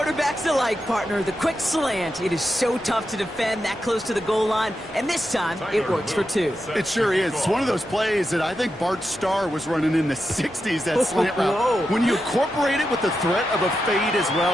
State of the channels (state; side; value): normal; both; correlation 0.88